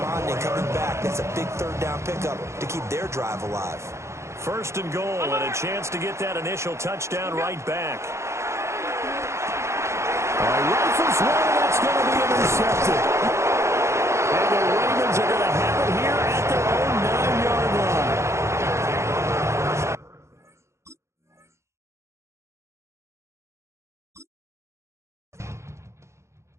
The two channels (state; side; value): late; left; 0.14 ms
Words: coming back? That's a big 3rd down pickup to keep their drive alive. 1st and goal and a chance to get that initial touchdown right back. Rifles one, that's going to be intercepted. And the Ravens are going to have it here at their own 9-yard line.